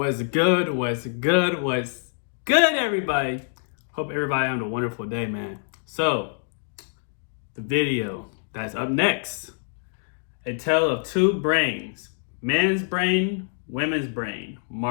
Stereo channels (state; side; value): silent; right; digital silence